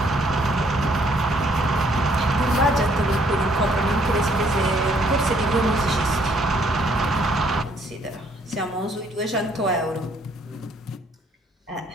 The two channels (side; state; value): both; normal; correlation 0.65